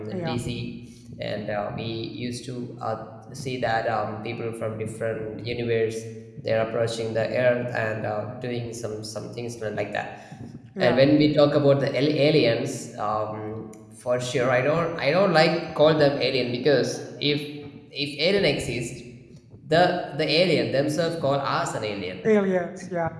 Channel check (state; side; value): identical; both; correlation 1.00